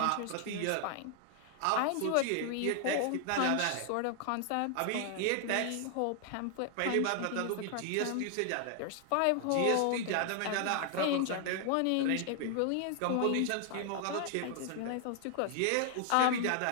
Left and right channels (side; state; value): both; different; correlation 0.00